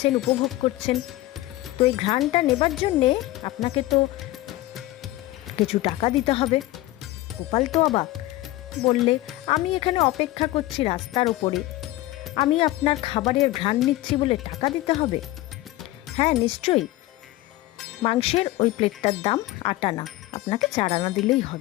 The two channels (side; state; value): right; quieter; 17.2 dB